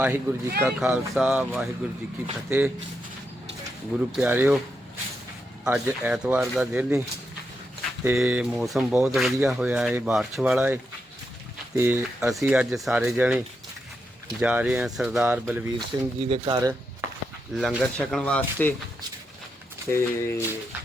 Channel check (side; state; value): both; normal; correlation 0.84